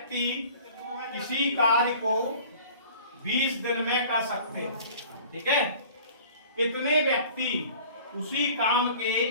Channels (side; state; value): both; inverted; correlation -0.47